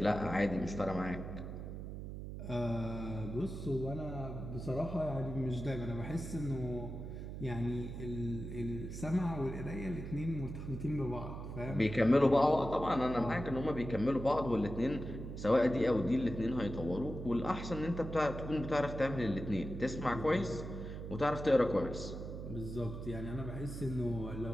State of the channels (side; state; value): right; noise; hum, 8 dB below the sound